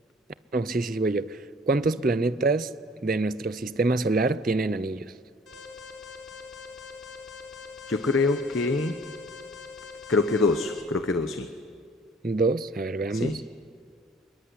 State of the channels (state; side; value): normal; both; correlation 0.53